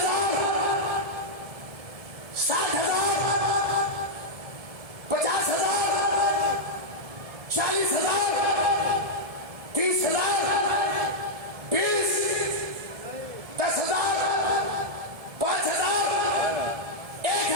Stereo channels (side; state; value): left; late; 1.7 ms